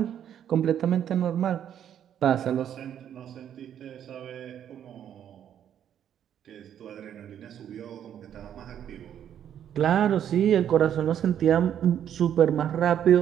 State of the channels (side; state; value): left; quieter; 9.7 dB